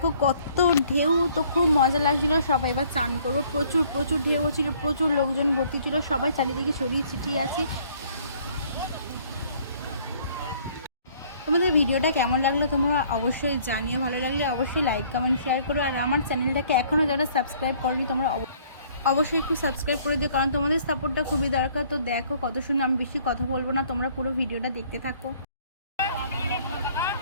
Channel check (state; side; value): inverted; both; correlation -0.59